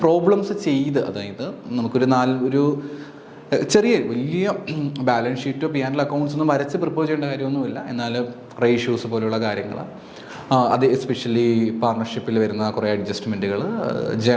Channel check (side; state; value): both; identical; correlation 1.00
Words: പ്രോബ്ലംസ് ചെയ്ത്, അതായത് നമുക്കൊരു വലിയ ബാലൻസ് ഷീറ്റോ P&L അക്കൗണ്ട്സ് ഒന്നും വരച്ച് പ്രിപ്പയർ ചെയ്യേണ്ട കാര്യമൊന്നുമില്ല. എന്നാൽ റേഷ്യോസ് പോലെയുള്ള കാര്യങ്ങൾ, അത് എസ്പെഷ്യലി പാർട്ണർഷിപ്പിൽ വരുന്ന കുറേ അഡ്ജസ്റ്റ്മെൻറ്റുകൾ,